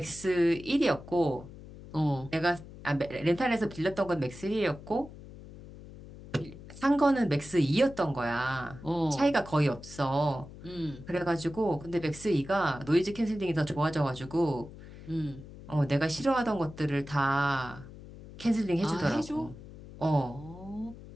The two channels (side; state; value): left; noise; hum, 16 dB below the sound